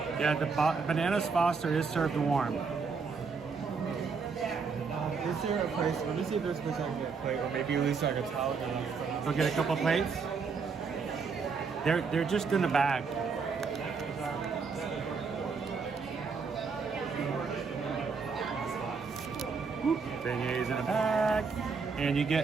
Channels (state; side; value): quieter; left; 5.1 dB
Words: Yeah, the Bananas Foster is served warm. Is there a place? Let me see if there's a place I can get a plate, or maybe at least like a towel. Go get a couple plates. They're just in the bag. Beignets in a bag. And you